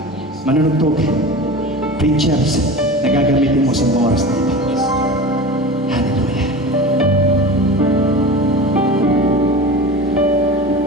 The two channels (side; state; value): both; normal; correlation 0.32